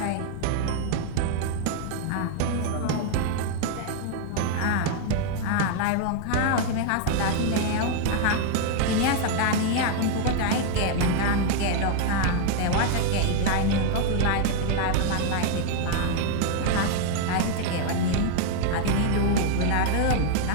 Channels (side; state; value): both; different; correlation 0.00